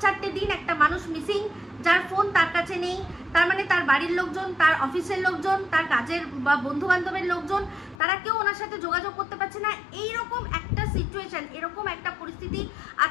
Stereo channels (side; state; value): right; drops out; at 8.0 s